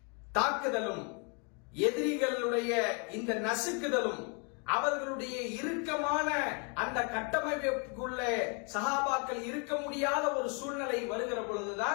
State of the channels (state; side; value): quieter; right; 35.8 dB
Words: தாக்குதலும், எதிரிகளுடைய இந்த நசுக்குதலும், அவர்களுடைய இறுக்கமான அந்த கட்டமைப்புக்குள்ளே சஹாபாக்கள் இருக்க முடியாத ஒரு சூழ்நிலை வருகிற